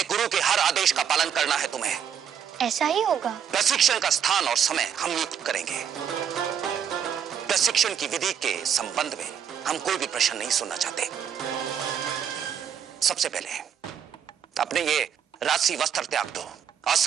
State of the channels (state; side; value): quieter; left; 8.2 dB